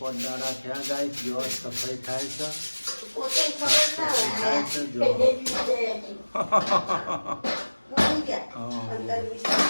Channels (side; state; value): both; inverted; correlation -1.00